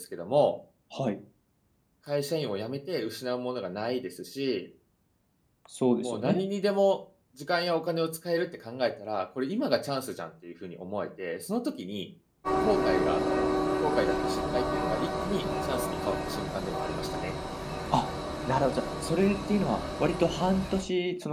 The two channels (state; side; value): identical; both; correlation 1.00